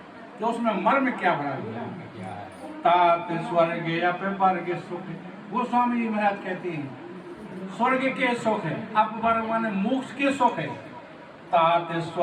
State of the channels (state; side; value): identical; both; correlation 1.00